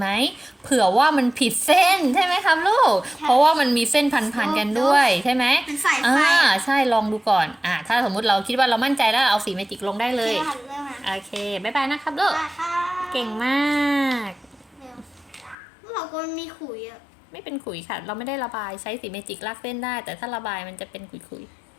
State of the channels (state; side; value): drops out; right; at 15.6 s